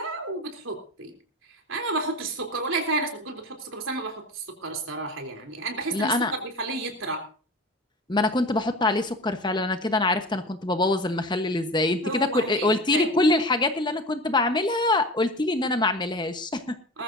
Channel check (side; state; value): both; normal; correlation 0.32